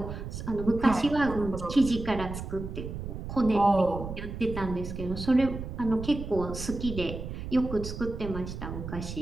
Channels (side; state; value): right; noise; rumble, 7 dB below the sound